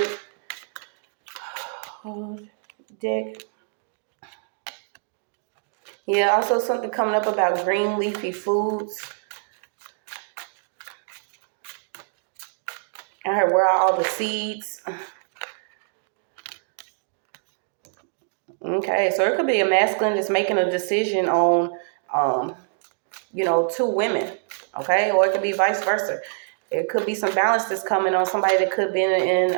deck. Yeah, also something coming up about green leafy foods. I heard where are all the seeds. Okay, so it could be a masculine that's making a decision on, two women, okay? Or it could be vice versa. It could be some balance that's coming on somebody that could be in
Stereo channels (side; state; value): left; silent; digital silence